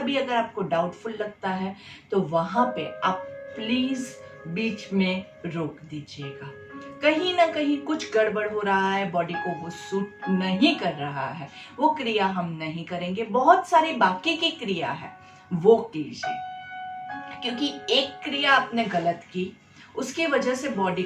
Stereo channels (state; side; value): identical; both; correlation 1.00